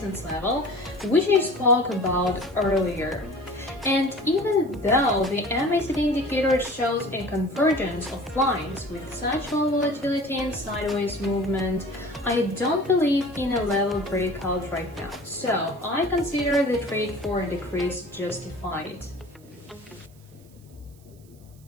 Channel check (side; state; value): right; noise; hiss, 29 dB below the sound